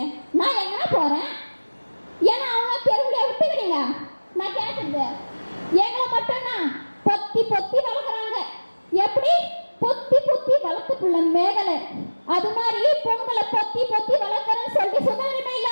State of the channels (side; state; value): both; inverted; correlation -1.00